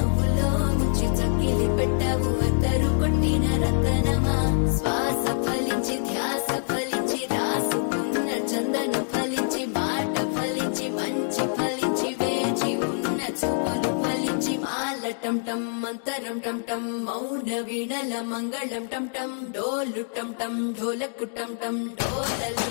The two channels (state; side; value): silent; right; digital silence